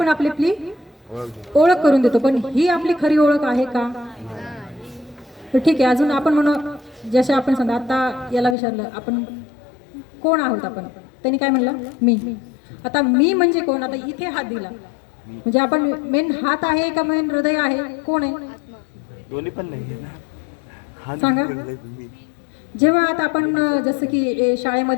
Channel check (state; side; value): drops out; right; at 8.6 s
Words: आपली ओळख करून देतो. पण ही आपली खरी ओळख आहे का? तर ठीक आहे, अजून आपण म्हणू जसे आपण समजा आता याला विचारलं आपण कोण आहोत आपण, त्यांनी काय म्हणलं? मी. आता मी म्हणजे कोण? आता इथे हात दिला म्हणजे आपण मेन हात आहे का मेन हृदय आहे? कोण आहे? दोन्ही पण नाही सांगा. जेव्हा आता आपण जसं की